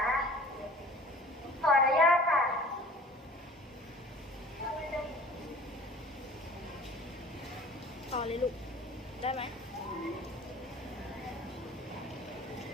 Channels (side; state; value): both; normal; correlation 0.46